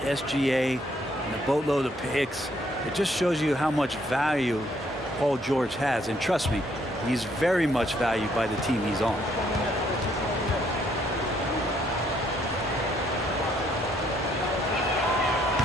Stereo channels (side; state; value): both; normal; correlation 0.69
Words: and a boatload of picks. It just shows you how much value Paul George has. And trust me, he's very much valued by the team he's on.